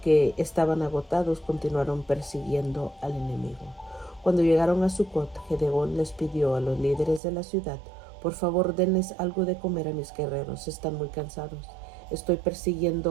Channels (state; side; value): drops out; left; at 7.2 s